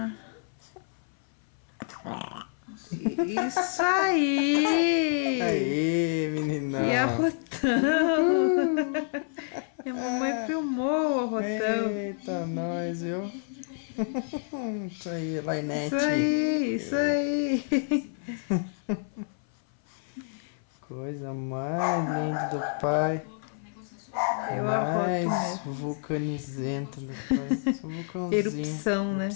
Isso aí! Aê, meninão! E arrotão! E a mamãe filmou o arrotão. Eita, nós, viu? Isso aí, Lainete. Isso aí! Coisa mais linda do pai. Eu arroto Mais mesmo. vulcanizenta do pai. Só vulcãozinho. Erupção, né?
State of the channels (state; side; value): silent; right; 56 dB below the other